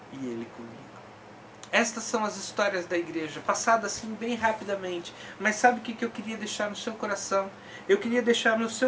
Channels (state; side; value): identical; both; correlation 1.00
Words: e ele comigo. Estas são as histórias da igreja, passadas assim bem rapidamente. Mas sabe o que eu queria deixar no seu coração? Eu queria deixar no